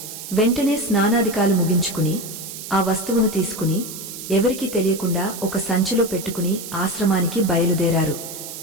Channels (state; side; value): noise; right; hiss, 10 dB below the sound